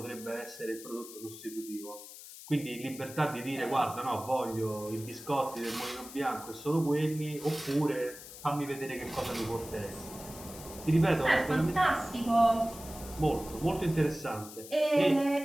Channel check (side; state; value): left; noise; hiss, 15 dB below the sound